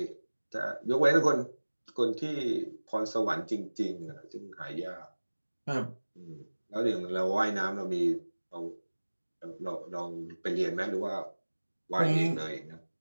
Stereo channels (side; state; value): both; inverted; correlation -1.00